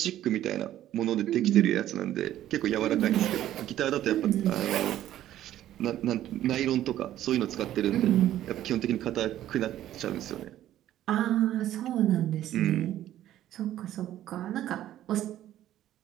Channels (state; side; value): quieter; left; 12.7 dB